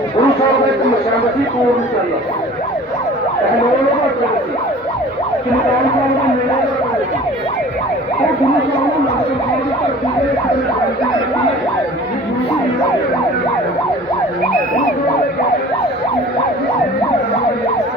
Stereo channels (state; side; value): normal; both; correlation 0.45